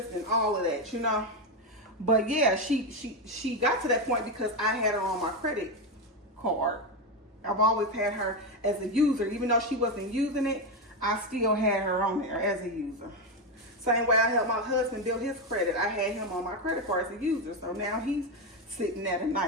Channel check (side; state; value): both; normal; correlation 0.10